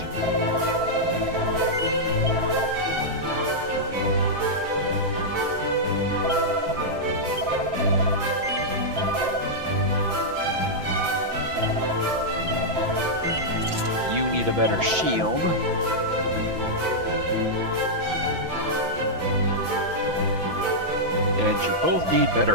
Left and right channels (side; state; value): left; late; 5.9 ms